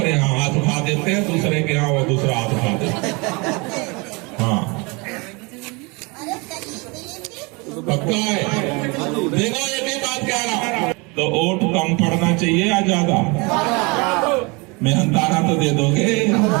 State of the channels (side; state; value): left; quieter; 28.3 dB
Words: यहाँ हाथ उठा देते हैं, दूसरे के यहाँ वो दूसरा हाथ उठा देते हैं। हाँ, पक्का है। देखो एक ही बात कह रहा हूं, तो वोट कम पड़ना चाहिए या ज्यादा? मेहनताना तो दे दोगे,